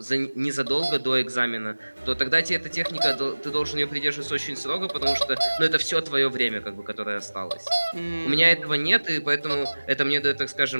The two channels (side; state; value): both; inverted; correlation -1.00